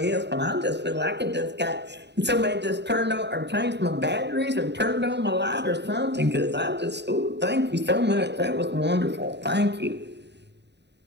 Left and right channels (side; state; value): left; late; 0.50 ms